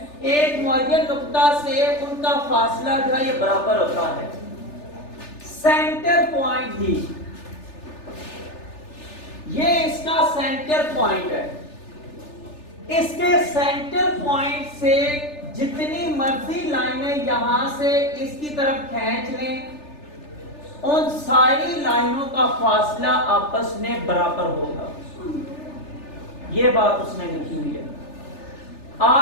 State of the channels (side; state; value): right; late; 3.4 ms